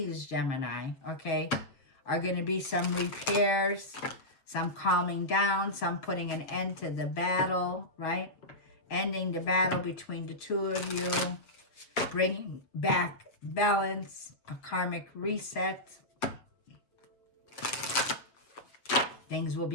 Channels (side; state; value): right; late; 7.3 ms